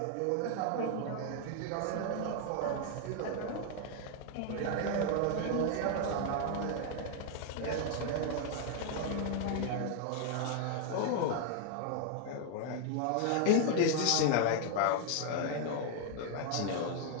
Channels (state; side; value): different; both; correlation 0.00